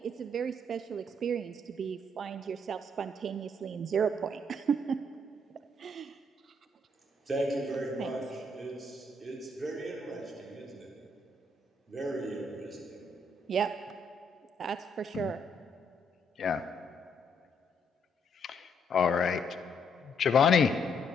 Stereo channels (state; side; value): normal; both; correlation 0.72